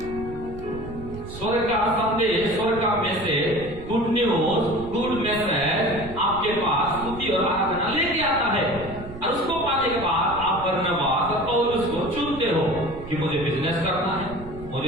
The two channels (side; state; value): right; noise; rumble, 14 dB below the sound